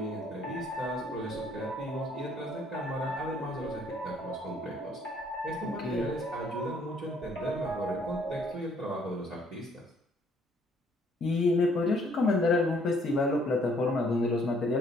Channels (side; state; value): both; normal; correlation 0.64